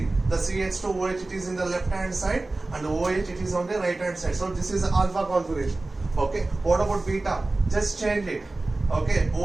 the CH2OH it is in the left hand side and OH it is on the right hand side. So this is alpha configuration. Okay, what about beta? Just change it. Okay,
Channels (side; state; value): left; quieter; 3.1 dB